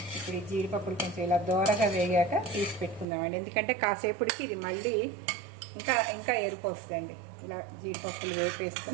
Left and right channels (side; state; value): left; drops out; at 3.1 s